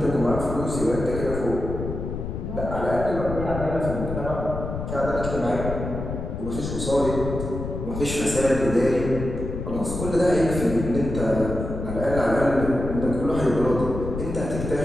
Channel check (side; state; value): left; noise; rumble, 6 dB below the sound